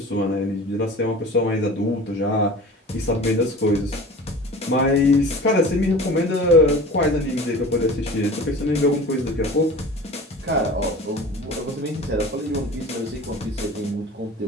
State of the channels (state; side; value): normal; both; correlation 0.39